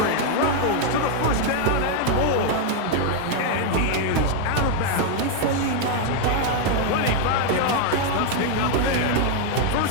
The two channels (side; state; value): both; different; correlation 0.00